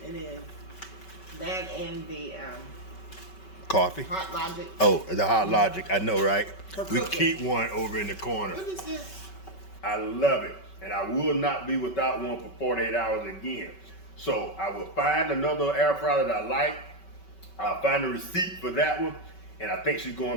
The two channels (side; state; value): right; late; 5.3 ms